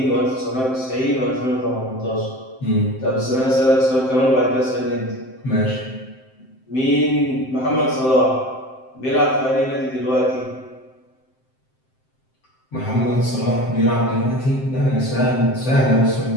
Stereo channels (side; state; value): right; late; 7.7 ms